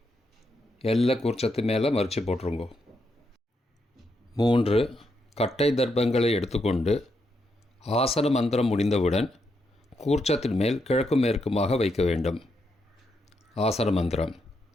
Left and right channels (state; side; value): normal; both; correlation 0.81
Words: எல்லா கூர்ச்சத்து மேலே மறித்து போட்டுருங்கோ. 3 கட்டை தர்ப்பங்களை எடுத்துக்கொண்டு ஆசன மந்திரம் முடிந்தவுடன் கூர்ச்சத்தின் மேல் கிழக்கு மேற்குமாக வைக்க வேண்டும். ஆசன மந்திரம்.